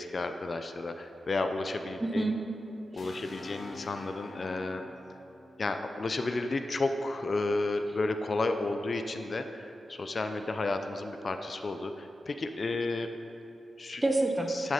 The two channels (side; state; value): both; normal; correlation 0.91